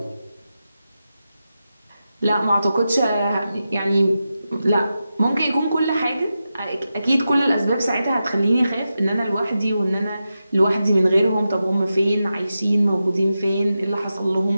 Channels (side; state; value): both; inverted; correlation -0.91